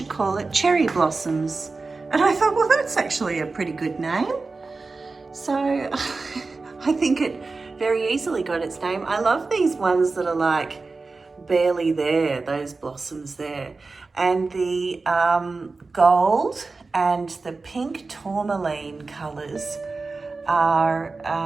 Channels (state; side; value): quieter; left; 3.9 dB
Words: call it Cherry Blossoms." And I thought, well, that's actually a pretty good name. So I think it very easily got its name. I love these ones that are like barely there, those blossoms there. And the gold and the pink tourmaline colours are,